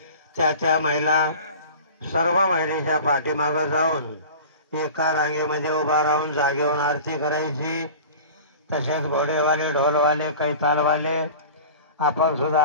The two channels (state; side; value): inverted; both; correlation -0.38